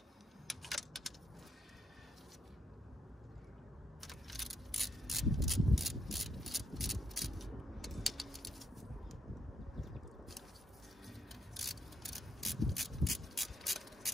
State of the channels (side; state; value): both; normal; correlation 0.78